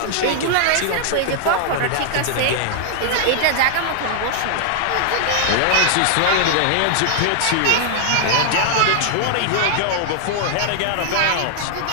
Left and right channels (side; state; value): both; different; correlation -0.01